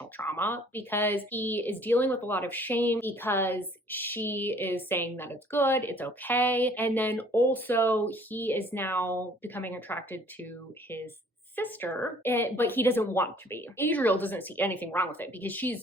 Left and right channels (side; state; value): both; normal; correlation 0.56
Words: trauma, because he is dealing with a lot of shame because she is saying that it's good, it's okay. And then also he is now becoming attracted to his sister, but he doesn't want to be. Adriel doesn't see anything wrong with it because